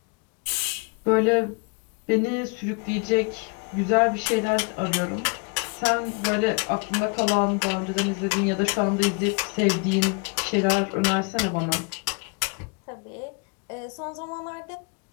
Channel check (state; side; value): quieter; right; 31.1 dB